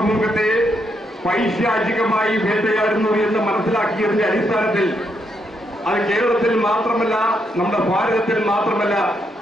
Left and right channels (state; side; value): normal; both; correlation 0.78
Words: പൈശാചികമായി വേട്ടയാടുന്നു എന്ന് മനസ്സിലാക്കിയതിന്റെ അടിസ്ഥാനത്തിൽ അത് കേരളത്തിൽ മാത്രമല്ല, നമ്മുടെ ഭാരതത്തിൽ മാത്രമല്ല,